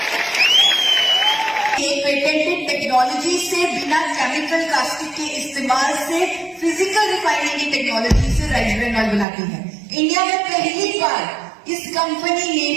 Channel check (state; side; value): drops out; left; at 9.2 s